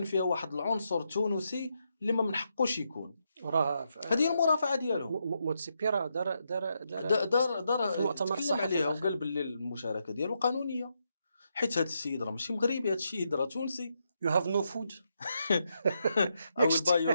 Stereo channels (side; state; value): both; inverted; correlation -0.81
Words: فيها واحد العنصر تونسي اللي ما من حقوش يكون. راه هذه هي المرافعه ديالهم. موتسيبي راه دار في المؤتمر تكلم الصحفي عليها الأخير. وقال باللي المشاركه ديالو قانونيه، حيت هذا السيد راه ماشي مغربي، هذا السيد راه تونسي. You have no food. او البايو